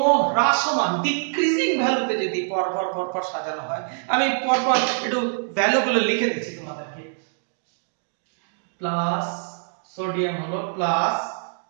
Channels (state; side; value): silent; left; 62 dB below the other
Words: হ্রাসমান ডিক্রিজিং ভ্যালুতে যদি পরপর সাজানো হয়, আমি পরপর একটু ভ্যালুগুলো লিখে দিচ্ছি তোমাদেরকে। প্লাস সোডিয়াম হলো প্লাস